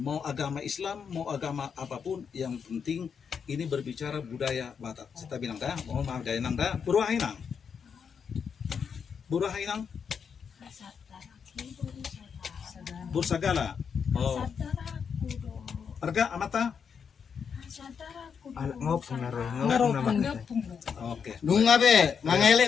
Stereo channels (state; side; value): quieter; right; 6.6 dB